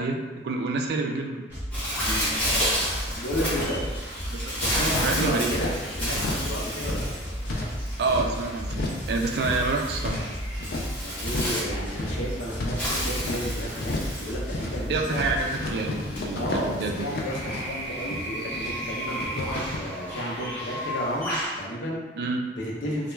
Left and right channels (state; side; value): normal; both; correlation 0.36